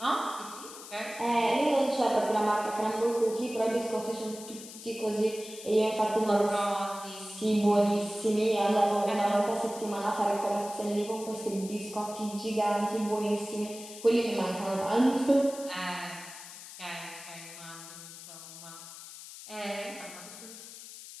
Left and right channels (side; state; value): left; noise; hiss, 14 dB below the sound